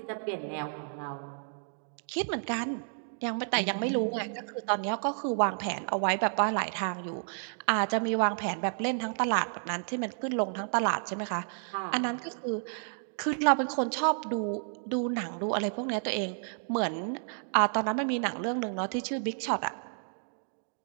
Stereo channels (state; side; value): silent; left; digital silence